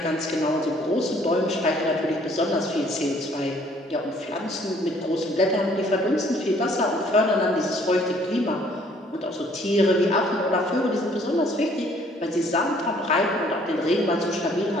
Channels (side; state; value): both; normal; correlation 0.60